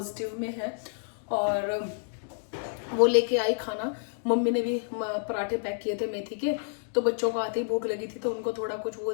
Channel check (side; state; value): right; silent; digital silence